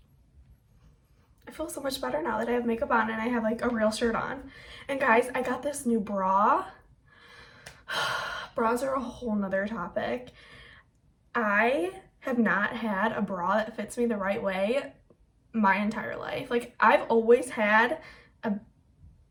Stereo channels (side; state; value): both; identical; correlation 1.00